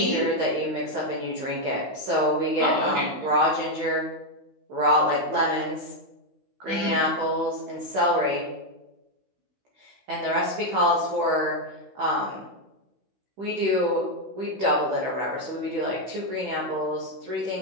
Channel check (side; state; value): left; late; 15 ms